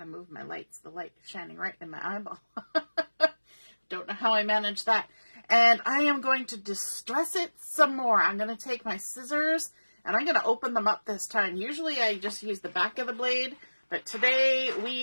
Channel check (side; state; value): both; inverted; correlation -1.00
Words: move my lights. The light is shining right in my eyeball. Don't know how I managed that. And I am going to distress it some more. I'm going to take my scissors and I'm going to open them up this time. Usually I just use the back of the blade, but today